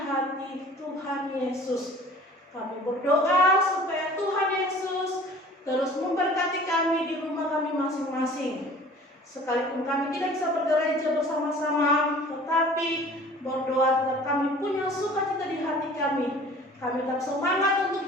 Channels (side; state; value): both; normal; correlation 0.46